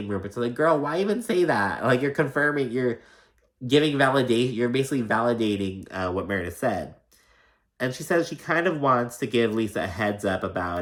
rumors. So like, girl, why even say that? Like, you're confirming, you're giving validation, you're basically validating what Meredith said. And she says she kind of wants to give Lisa a heads up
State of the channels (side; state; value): both; identical; correlation 1.00